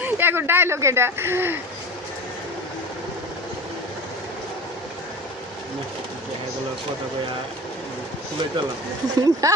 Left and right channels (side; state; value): both; normal; correlation 0.34